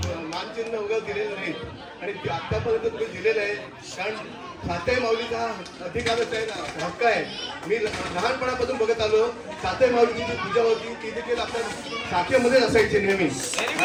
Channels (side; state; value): both; identical; correlation 1.00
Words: मानचिन्ह वगैरे दिलेलं नाही आणि आतापर्यंत तुम्ही दिलेलं आहे. कारण सातेमौलीचा अधिकारच आहे ना, हक्क आहे. मी लहानपणापासून बघत आलो सातेमौलीची जी पूजा होती ती देखील आपल्या शाखेमध्ये असायची नेहमी